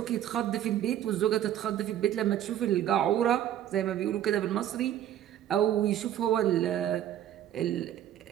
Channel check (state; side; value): quieter; left; 11.3 dB